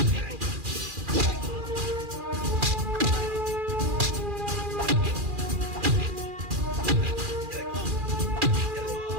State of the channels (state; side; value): late; left; 2.4 ms